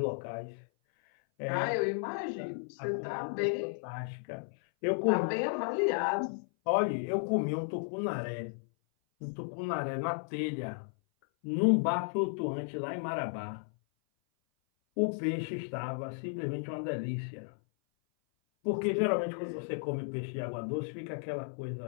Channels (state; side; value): silent; right; 55 dB below the other